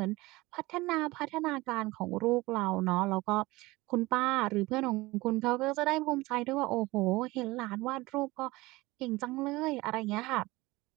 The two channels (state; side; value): quieter; left; 20.8 dB